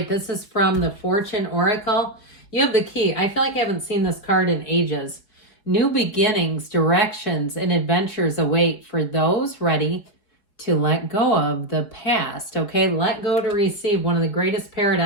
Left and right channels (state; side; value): late; right; 4.8 ms